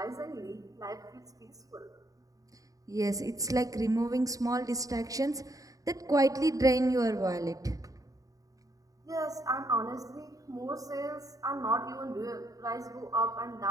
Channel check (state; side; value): late; left; 0.17 ms